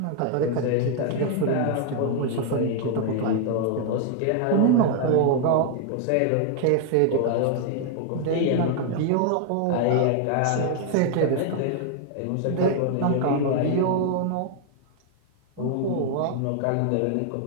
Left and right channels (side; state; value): both; different; correlation 0.00